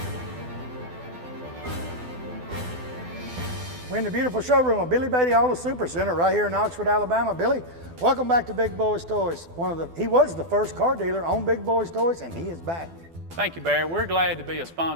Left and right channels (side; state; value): left; late; 12 ms